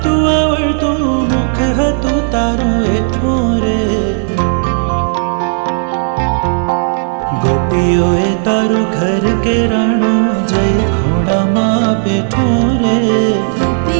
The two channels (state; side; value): silent; left; digital silence